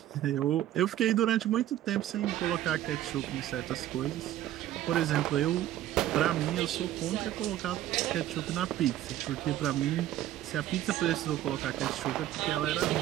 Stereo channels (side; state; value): left; quieter; 13.0 dB